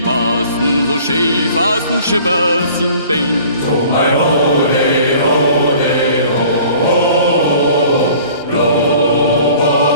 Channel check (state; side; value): inverted; both; correlation -0.50